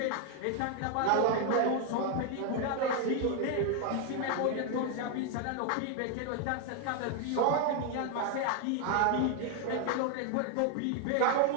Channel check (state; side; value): different; both; correlation 0.01